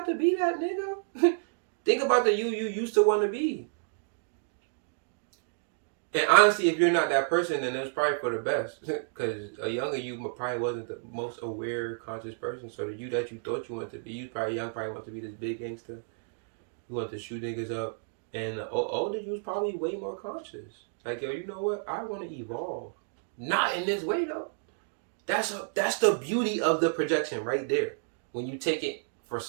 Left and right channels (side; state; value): left; silent; digital silence